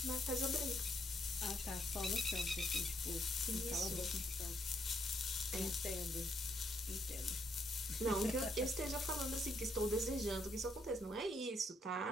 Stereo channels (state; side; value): normal; both; correlation 0.74